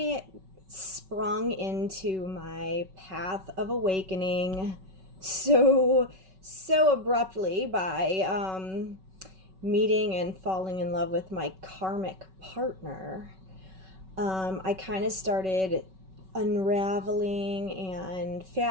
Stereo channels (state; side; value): late; left; 5.3 ms